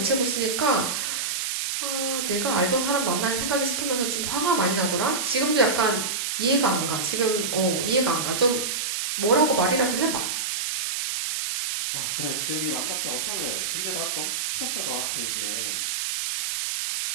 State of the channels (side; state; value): right; noise; hiss, 1 dB below the sound